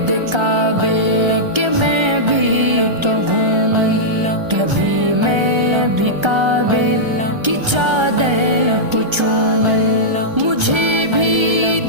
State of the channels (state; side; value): late; left; 1.3 ms